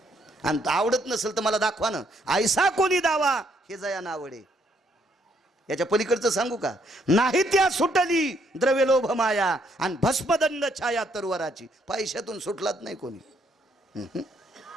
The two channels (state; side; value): normal; both; correlation 0.71